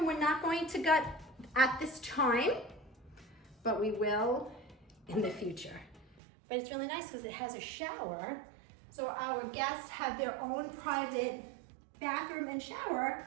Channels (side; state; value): left; drops out; at 6.2 s